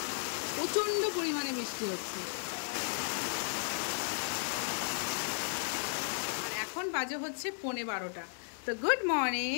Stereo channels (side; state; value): right; silent; 55 dB below the other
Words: প্রচন্ড পরিমাণে বৃষ্টি হচ্ছে। আর এখন বাজে হচ্ছে 11:15। তো গুড